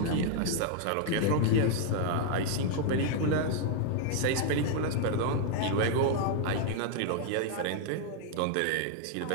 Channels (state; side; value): different; both; correlation 0.00